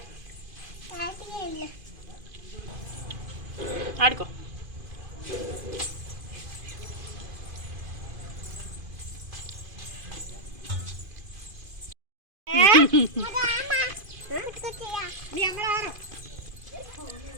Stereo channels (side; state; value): left; late; 2.5 ms